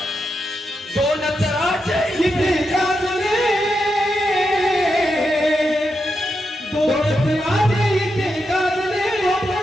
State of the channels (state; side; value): normal; both; correlation 0.85